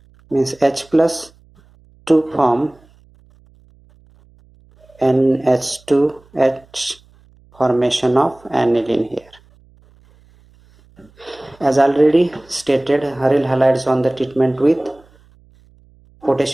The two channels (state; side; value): noise; right; hum, 30 dB below the sound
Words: means H plus to form NH2H formation of aniline here. As already stated, aryl halides on the treatment with